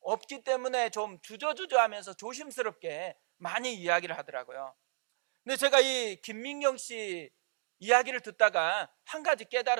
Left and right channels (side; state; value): left; silent; digital silence